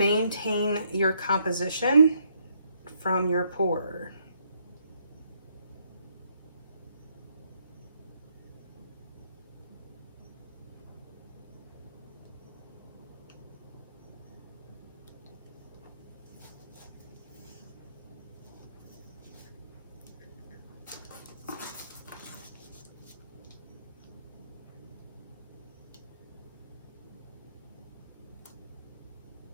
your composition from your pour.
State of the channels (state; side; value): inverted; both; correlation -0.71